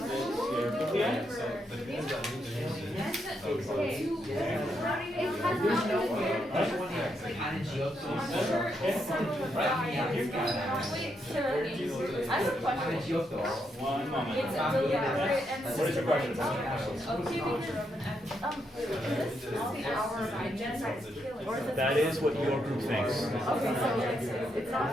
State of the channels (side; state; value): both; normal; correlation 0.80